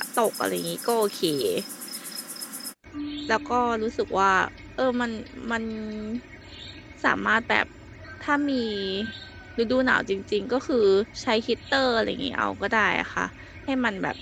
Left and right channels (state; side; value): identical; both; correlation 1.00